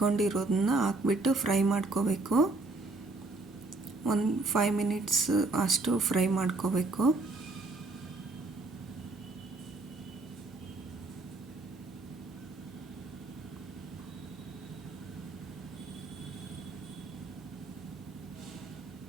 ಹಾಕ್ಬಿಟ್ಟು ಫ್ರೈ ಮಾಡ್ಕೋಬೇಕು. ಒಂದು 5 ಮಿನಿಟ್ಸ್ ಅಷ್ಟು ಫ್ರೈ ಮಾಡ್ಕೋಬೇಕು.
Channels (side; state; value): left; quieter; 3.2 dB